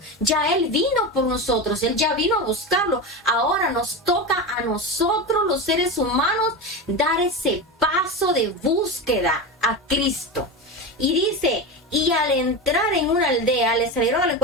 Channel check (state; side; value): normal; both; correlation 0.21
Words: Ya Él vino por nosotros, Él ya vino a buscarlo. Ahora nos toca a nosotros, los seres humanos, dar ese paso de búsqueda a Cristo. Y dice, y al entrar en una aldea, le salieron al